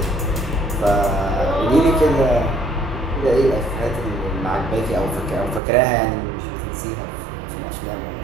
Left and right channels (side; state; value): left; drops out; at 5.6 s